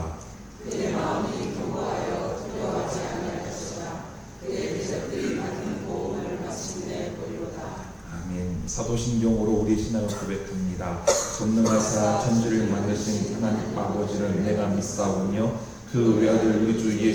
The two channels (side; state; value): both; identical; correlation 1.00